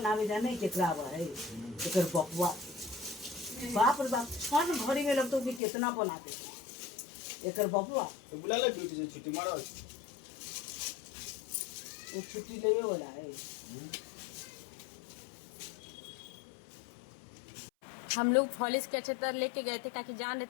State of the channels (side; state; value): right; drops out; at 5.6 s